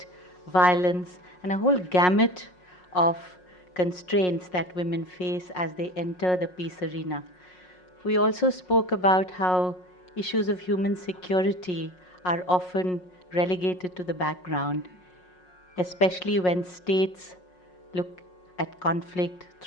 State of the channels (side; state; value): right; late; 5.5 ms